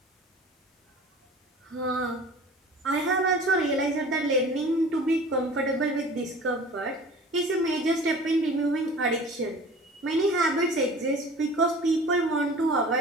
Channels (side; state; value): both; normal; correlation 0.42